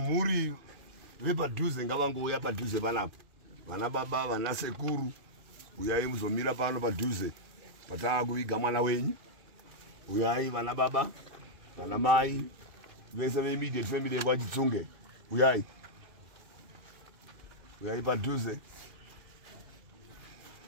vepadhuze ngavangouya padhuze panapo. Vana baba, vana sekuru, uyai muzomira pano padhuze. Patava kuviga mwana wenyu. Uyai vana baba, vana mai, vese ve-immediate family yekwachitsunge. Uyai. Uyai padhuze.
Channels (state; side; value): late; left; 2.5 ms